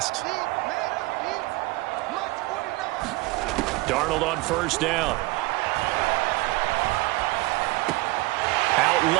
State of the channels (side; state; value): left; quieter; 22.1 dB